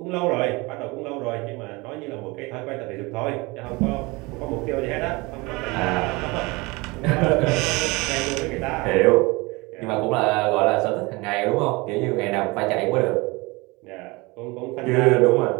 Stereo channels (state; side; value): quieter; left; 24.6 dB